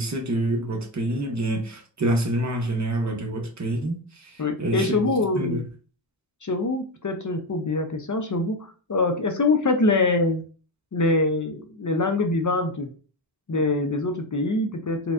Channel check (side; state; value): both; normal; correlation 0.15